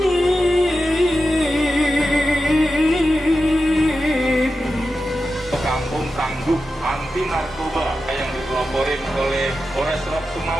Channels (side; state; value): both; normal; correlation 0.91